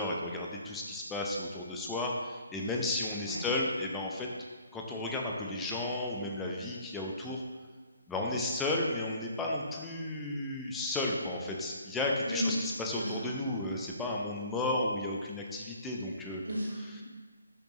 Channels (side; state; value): both; inverted; correlation -0.47